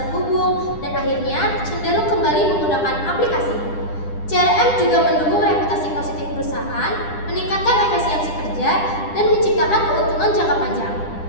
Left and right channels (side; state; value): right; late; 9.9 ms